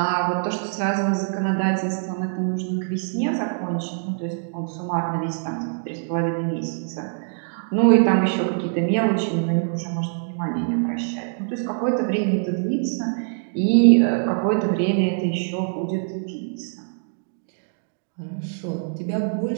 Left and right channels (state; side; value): silent; left; digital silence